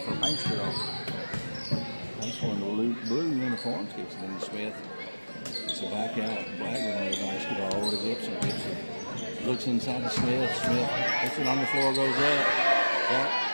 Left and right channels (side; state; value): both; inverted; correlation -1.00